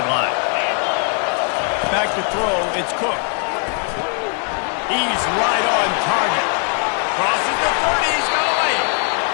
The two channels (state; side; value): quieter; right; 39.9 dB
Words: Back to throw. It's Cook. He's right on target. Crosses the 30. He's got a lane.